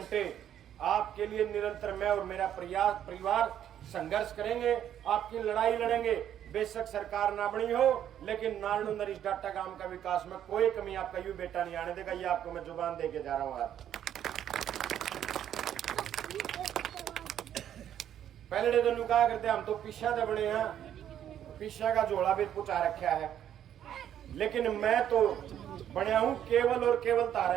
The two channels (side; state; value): left; quieter; 10.3 dB